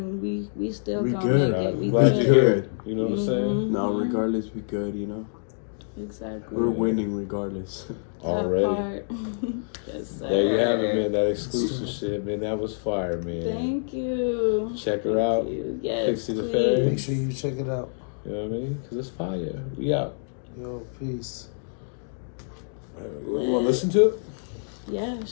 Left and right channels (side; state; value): right; silent; digital silence